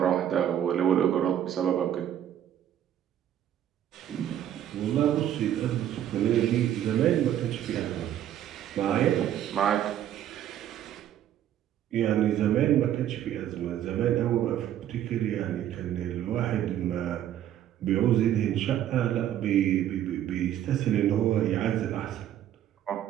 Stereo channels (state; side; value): quieter; left; 11.1 dB